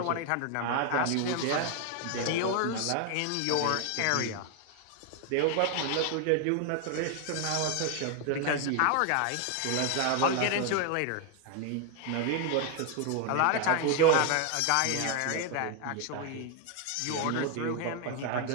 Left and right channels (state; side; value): different; both; correlation 0.01